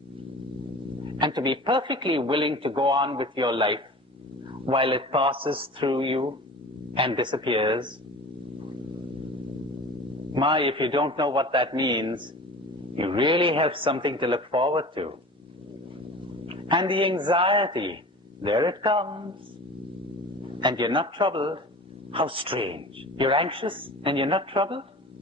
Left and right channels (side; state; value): both; normal; correlation 0.38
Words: and to be perfectly willing to go on with your life while it passes through you and disappears? My, if you don't know what that means, you really have something to look forward to. And the anxiety, there it comes. And you're not troubled. How strange. You're anxious and you're not troubled?